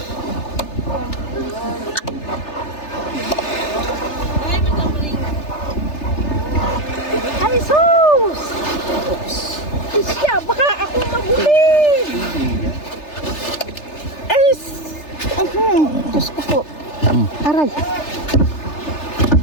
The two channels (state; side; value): late; right; 3.3 ms